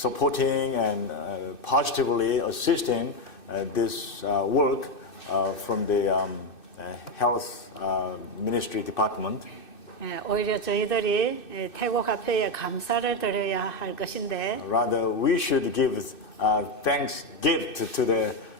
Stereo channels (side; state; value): right; late; 2.6 ms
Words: and positively assisting this work from the health ministry department. 예, 오히려 저희들이 태국 화폐에 감사를 드려야 할 것인데 Rather, we should give thanks gift to the